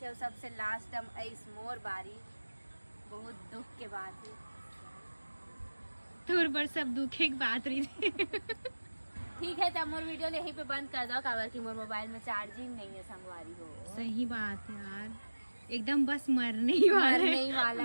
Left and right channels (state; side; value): inverted; both; correlation -1.00